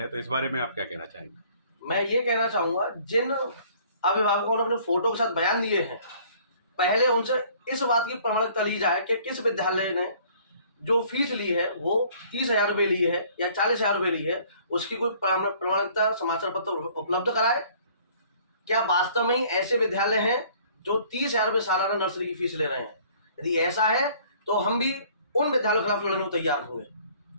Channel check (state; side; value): inverted; both; correlation -0.56